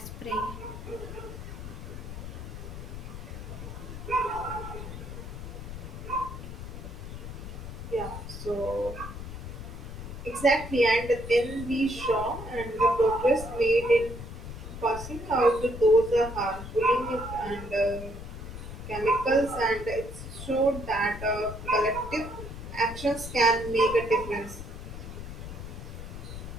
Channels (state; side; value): noise; left; rumble, 9 dB below the sound